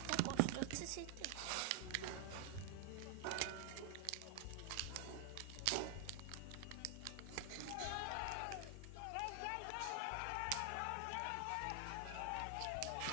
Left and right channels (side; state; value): both; different; correlation 0.00